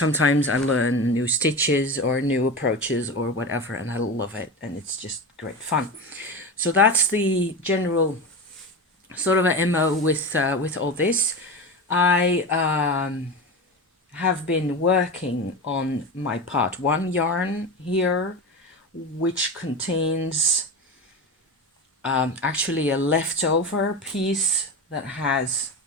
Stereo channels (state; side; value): normal; both; correlation 0.24